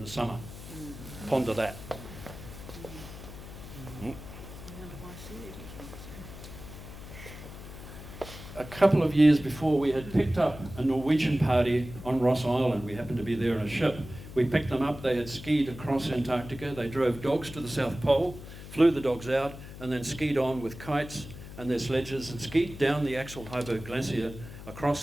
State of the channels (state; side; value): noise; left; hum, 13 dB below the sound